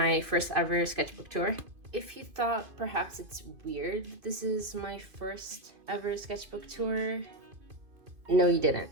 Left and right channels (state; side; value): late; left; 2.5 ms